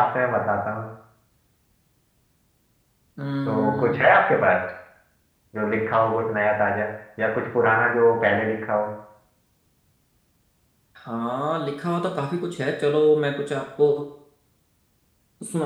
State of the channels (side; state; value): both; identical; correlation 1.00